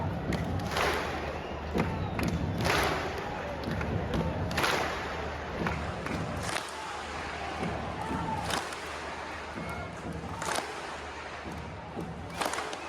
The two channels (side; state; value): both; identical; correlation 1.00